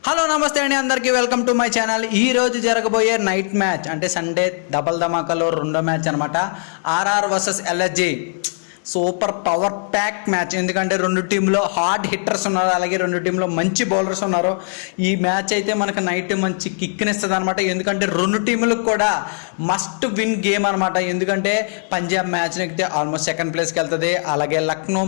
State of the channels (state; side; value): silent; right; digital silence